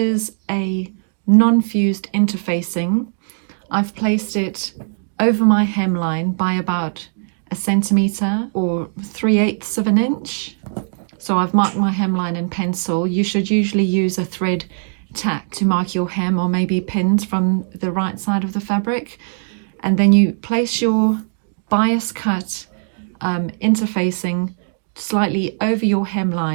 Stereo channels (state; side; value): silent; left; digital silence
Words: a non-fused interfacing. I've placed it over my hemline by about 1 centimetre or 3/8 of an inch. So I've marked my hemline in pencil. You should usually use a thread tack to mark your hem, or maybe pins from the right side of the fabric. And then you place your bias cut interfacing slightly over your